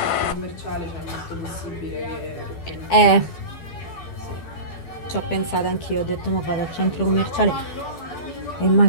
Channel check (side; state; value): right; late; 12 ms